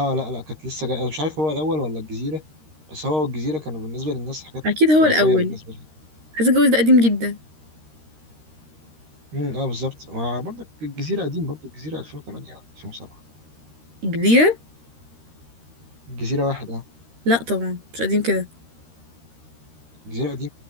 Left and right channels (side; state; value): left; late; 13 ms